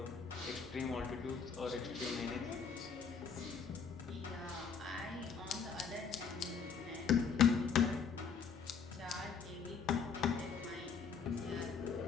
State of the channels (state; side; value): quieter; right; 6.1 dB